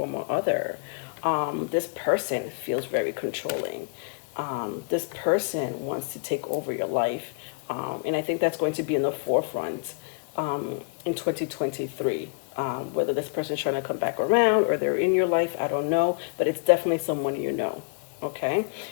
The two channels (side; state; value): right; quieter; 35.7 dB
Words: or other. This person feels very controlling. This person wants to take over your life. And I think that's going to be in the forefront in 2023. Whether this person's trying to come back around or they're in your life, I don't know. But it's definitely someone you know. Okay?